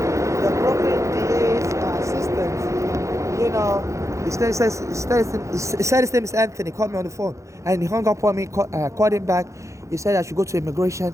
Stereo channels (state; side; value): late; left; 0.15 ms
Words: the Brooklyn DA's assistant, you know, he said his name is Anthony. Called me on the phone and he hung up on me. Called him back. He said I should go to